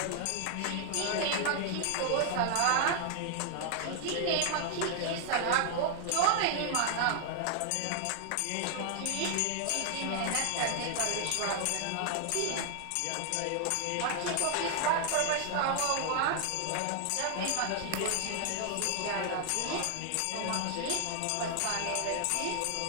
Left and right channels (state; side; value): different; both; correlation 0.00